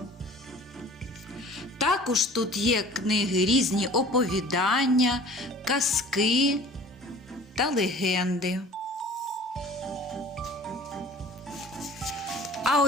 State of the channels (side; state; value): both; normal; correlation 0.46